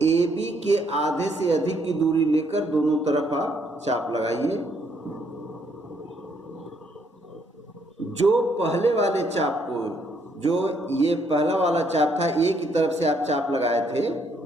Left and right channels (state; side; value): normal; both; correlation 0.70